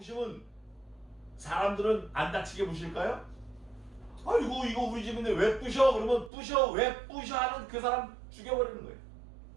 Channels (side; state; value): left; drops out; at 6.3 s